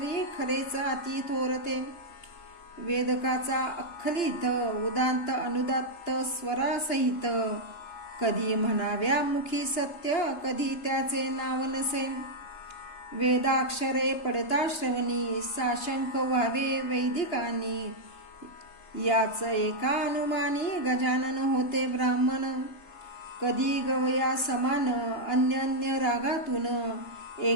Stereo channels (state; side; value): late; right; 2.9 ms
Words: खरेच अति थोरते. वेदकाचा अख्खलित उदांत अनुदात्त स्वरासहित, कधी म्हणाव्या मुखी सत्य कधी त्याचे नाव नसे. वेदाक्षरे पडता श्रवणी, साशंक व्हावे वैदिकांनी, याच एका अनुमानी गजानन होते ब्राह्मण. कधी गवया समान अन्य रागातून,